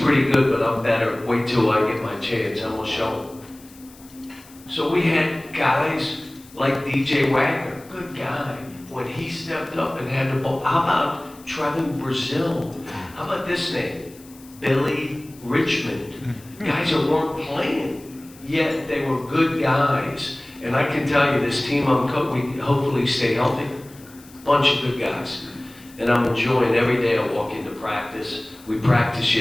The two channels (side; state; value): left; noise; hiss, 23 dB below the sound